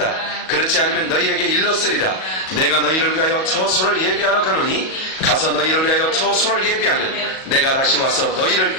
그렇지 않으면 너희에게 일렀으리라. 내가 너희를 위하여 처소를 예비하러 가노니 가서 너희를 위하여 처소를 예비하면 내가 다시 와서 너희를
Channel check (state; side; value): late; right; 38 ms